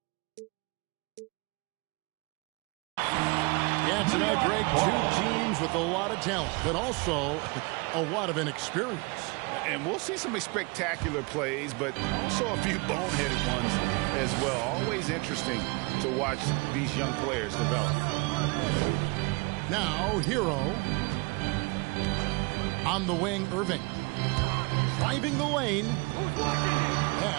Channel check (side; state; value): left; quieter; 28.3 dB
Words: Yeah, tonight, Greg, two teams with a lot of talent, but also a lot of inexperience. And we'll see some spectacular plays, but also a few boneheaded ones as well. Always interesting to watch these young players develop. Now, Hero. On the wing, Irving. Driving the lane.